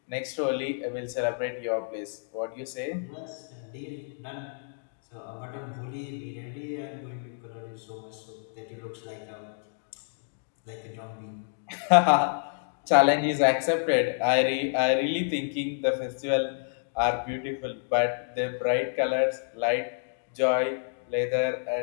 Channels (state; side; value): silent; right; digital silence